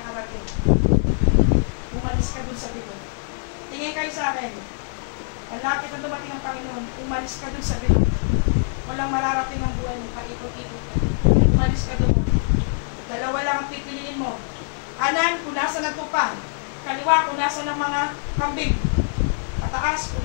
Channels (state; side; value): silent; right; digital silence